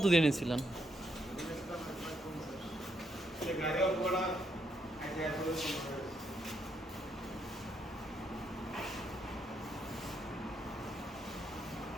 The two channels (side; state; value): both; normal; correlation 0.76